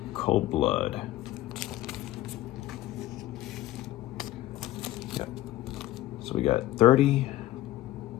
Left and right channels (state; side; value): quieter; right; 15.1 dB